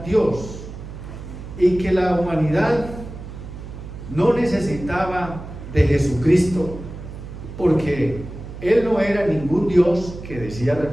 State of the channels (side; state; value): right; noise; hum, 12 dB below the sound